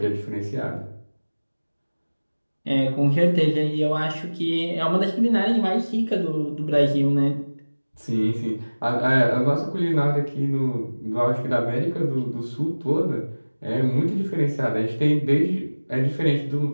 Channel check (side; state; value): both; inverted; correlation -1.00